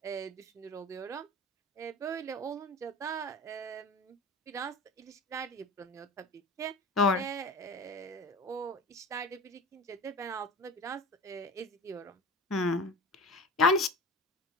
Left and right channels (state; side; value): normal; both; correlation 0.34